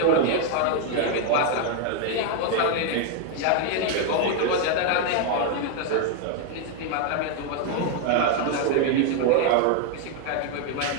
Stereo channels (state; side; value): different; both; correlation 0.00